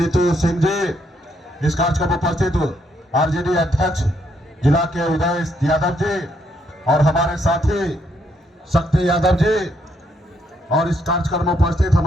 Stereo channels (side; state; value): both; normal; correlation 0.74